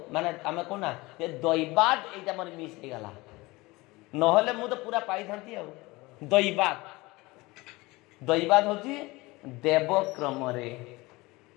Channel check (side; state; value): right; quieter; 22.0 dB